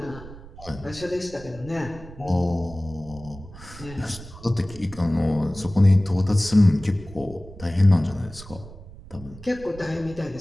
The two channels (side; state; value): right; noise; rumble, 16 dB below the sound